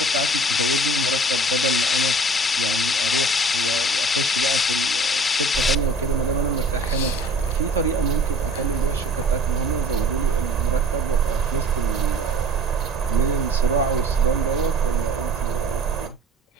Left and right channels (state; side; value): normal; both; correlation 0.46